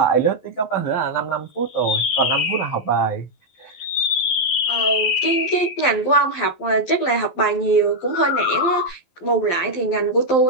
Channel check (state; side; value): late; right; 12 ms